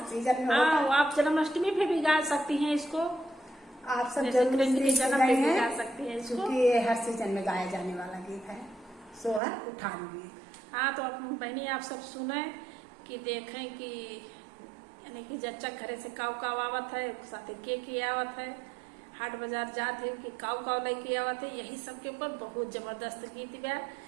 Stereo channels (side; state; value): left; drops out; at 9.4 s